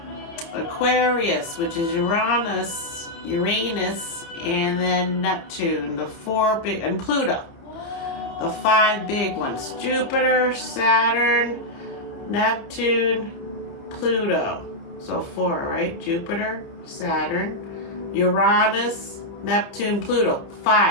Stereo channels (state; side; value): late; right; 29 ms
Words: Aquarius, which is Uranus, and then Neptune, the four big, and Pluto, the five big ones: Jupiter, Saturn, Neptune, Pluto. So four, right? Jupiter, Saturn, Uranus, Neptune, Pluto.